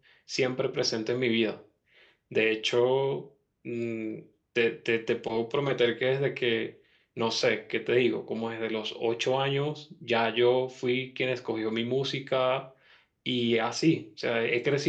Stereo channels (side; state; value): both; identical; correlation 1.00